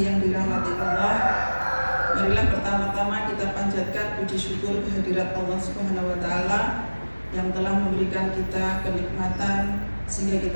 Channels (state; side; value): inverted; both; correlation -1.00